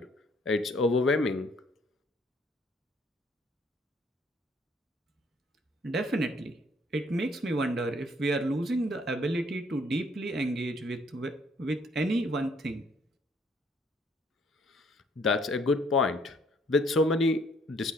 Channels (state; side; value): normal; both; correlation 0.64